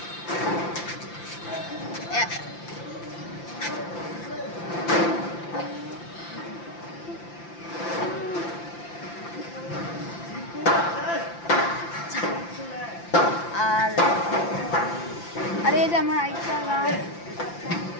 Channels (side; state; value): right; late; 5.8 ms